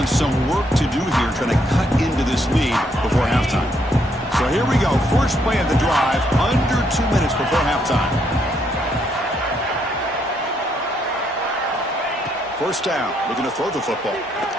some work to do here trying to cut into this lead before halftime. So here we go. First play of the drive under 2 minutes before halftime. First down. Looking to throw the football.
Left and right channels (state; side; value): normal; both; correlation 0.73